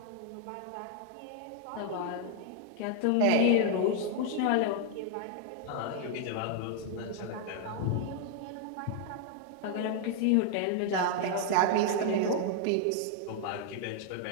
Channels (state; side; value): different; both; correlation 0.00